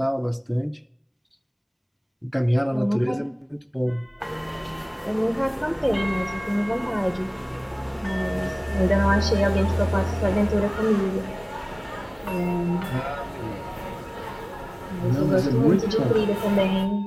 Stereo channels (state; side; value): identical; both; correlation 1.00